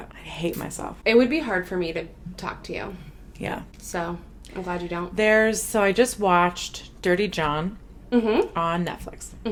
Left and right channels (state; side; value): identical; both; correlation 1.00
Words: I hate myself. It would be hard for me to talk to you. Yeah. So, I'm glad you don't. So I just watched Dirty John on Netflix.